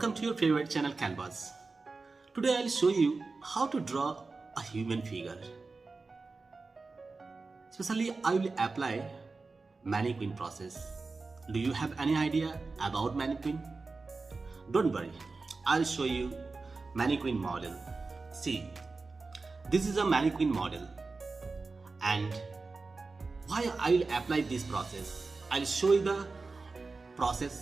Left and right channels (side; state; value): left; quieter; 3.9 dB